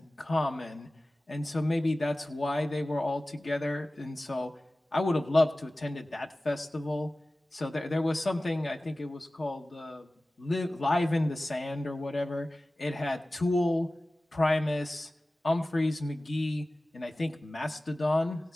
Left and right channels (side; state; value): both; normal; correlation 0.97